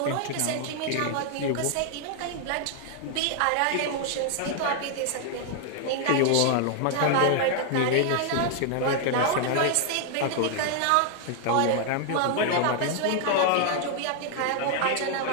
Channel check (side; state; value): both; different; correlation 0.00